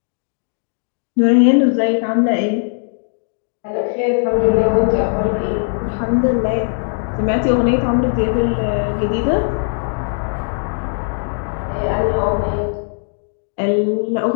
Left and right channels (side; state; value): right; silent; digital silence